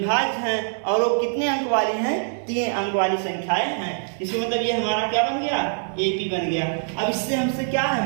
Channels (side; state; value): left; silent; digital silence